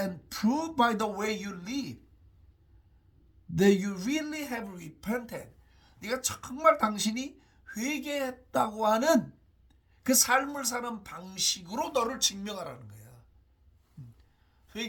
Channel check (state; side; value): identical; both; correlation 1.00